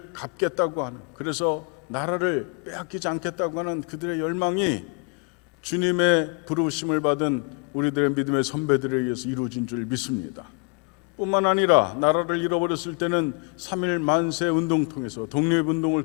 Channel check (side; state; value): right; quieter; 33.9 dB